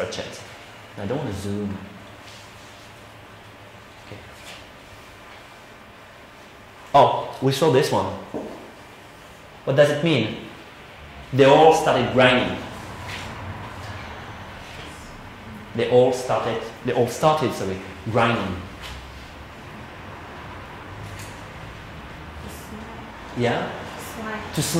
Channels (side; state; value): both; identical; correlation 1.00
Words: I don't want to zoom. Okay. Oh, we saw this one. What does it mean? They all started grinding. They all started, grinding. Yeah? To